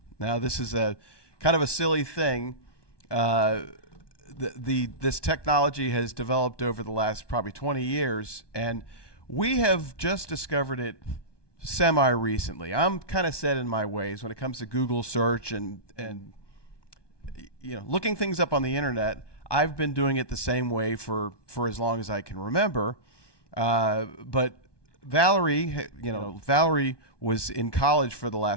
Now, this is a kind of a silly thing. This technology has developed over the last probably 20 years, and we have just discovered it semi-recently. I'm kind of set in my ways when it comes to Google search and looking things up on the internet. I've been doing it the same way for as long as I can remember. But Valerie, Valerie was in college for the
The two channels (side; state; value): right; late; 1.2 ms